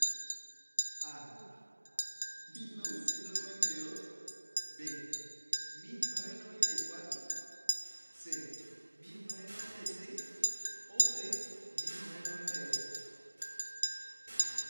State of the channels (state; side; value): inverted; both; correlation -1.00